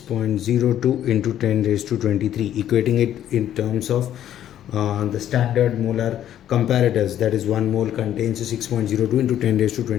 into 10 raised to 23, equating it in terms of the standard molar comparators, that is 1 mole contains 6.02 into 10 raised to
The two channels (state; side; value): quieter; right; 11.2 dB